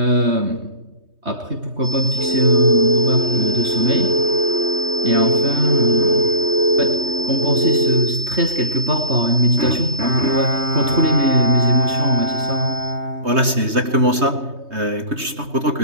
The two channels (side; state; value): left; late; 3.2 ms